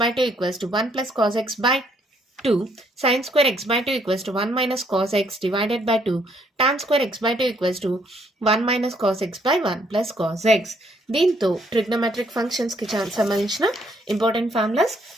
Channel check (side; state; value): both; normal; correlation 0.69